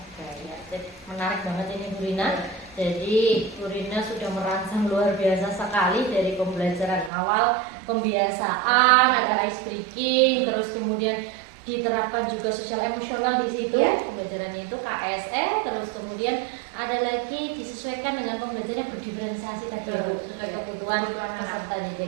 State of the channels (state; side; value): drops out; left; at 7.1 s